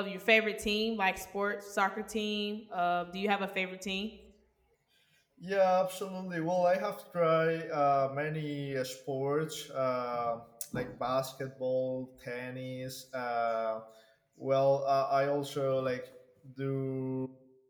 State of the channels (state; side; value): identical; both; correlation 1.00